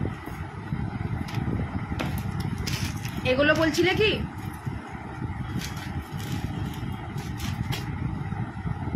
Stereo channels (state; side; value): identical; both; correlation 1.00